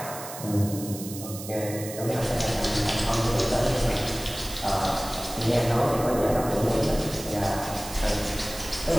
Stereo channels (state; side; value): noise; right; hiss, 11 dB below the sound